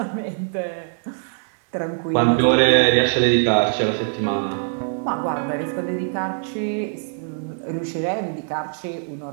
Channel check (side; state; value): left; silent; 64 dB below the other